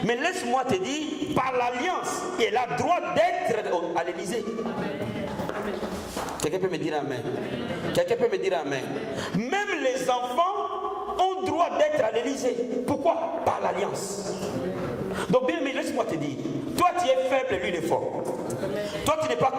Mais laisse-moi te dire, par l'alliance, elle a droit d'être à l'Élysée. Quelqu'un peut me dire amen? Quelqu'un peut me dire amen? Même les enfants ont droit d'être à l'Élysée. Pourquoi? Par l'alliance. Donc bien, mais laisse-moi te dire, toi tu es faible, lui il est fort. Toi tu n'es pas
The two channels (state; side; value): identical; both; correlation 1.00